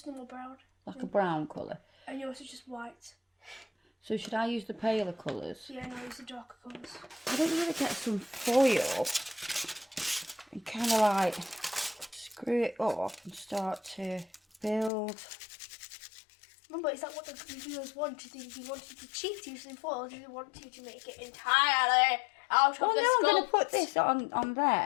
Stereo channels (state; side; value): drops out; right; at 14.9 s